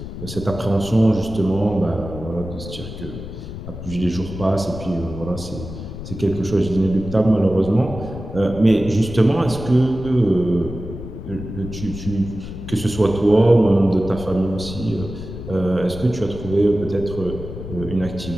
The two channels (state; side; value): noise; left; rumble, 10 dB below the sound